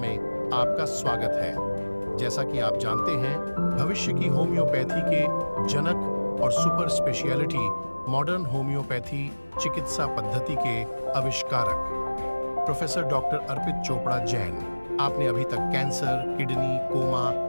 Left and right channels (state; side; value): inverted; both; correlation -1.00